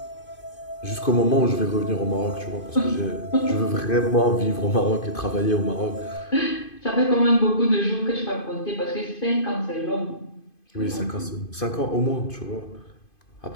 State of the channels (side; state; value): right; late; 2.5 ms